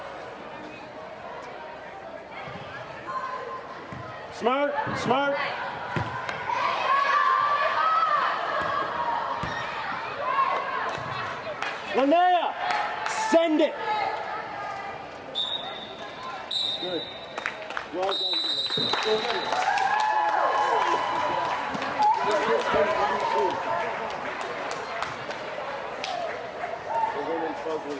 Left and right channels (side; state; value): both; identical; correlation 1.00